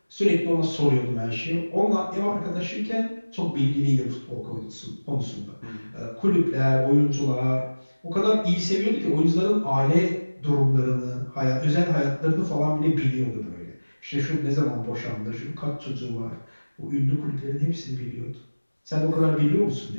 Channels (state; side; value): inverted; both; correlation -1.00